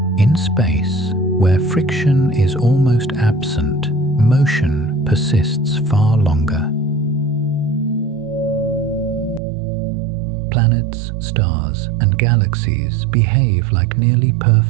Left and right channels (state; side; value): drops out; left; at 9.4 s